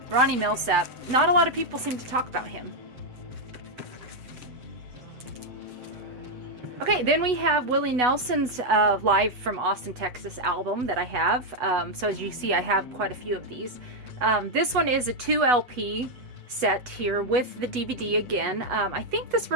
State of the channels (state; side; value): late; left; 8.1 ms